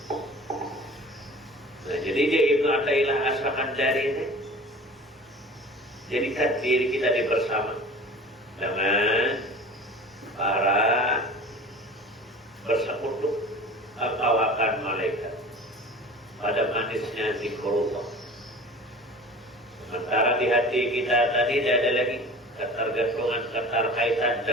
Nah, jadi dia Ibnu Athaillah As-Sakandari ini jadikan diri kita di bersama dengan para bersekutu kawakan malaikat pada manisnya zikrullah. Sementara di hati kita tadi tidak ada lagi ketergantungan, keterkaitan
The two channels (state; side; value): normal; both; correlation 0.40